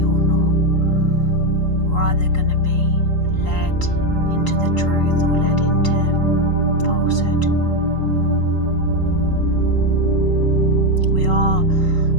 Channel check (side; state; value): right; late; 3.8 ms